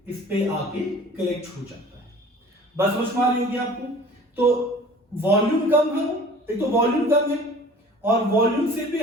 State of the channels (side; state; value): both; normal; correlation 0.46